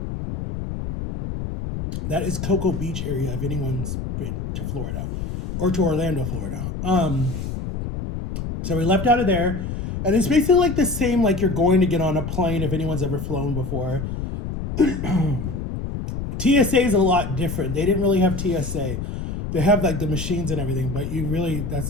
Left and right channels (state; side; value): noise; left; rumble, 5 dB below the sound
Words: is Cocoa Beach area if anyone's been to Florida or to Orlando, Florida. So we left out of there, and it's basically like the same like you're going to get on a plane if anyone's ever flown before. TSA is a lot different. They didn't really have TSA. They have like the machines and everything, but you really,